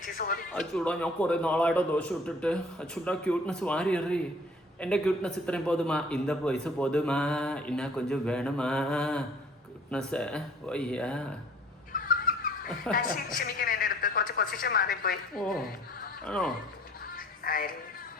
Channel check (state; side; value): normal; both; correlation 0.53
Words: അച്ചൂടാ, ഞാൻ കുറെ നാളായിട്ടോ ദോശ ഇട്ടിട്ട്. അച്ചൂടാ, ക്യൂട്ട്നെസ് വാരി എറി. എൻ്റെ ക്യൂട്ട്നെസ് ഇത്രയും പോതുമാ, இந்த പൈസ പോതുമാ, ഇന്നാ കൊഞ്ചം വേണമാ ക്യൂട്ട്നെസ്. വയ്യാ, ഓ ആണോ?